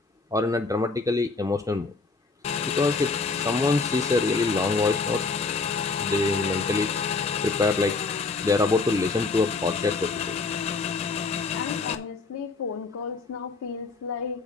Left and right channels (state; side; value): quieter; right; 4.0 dB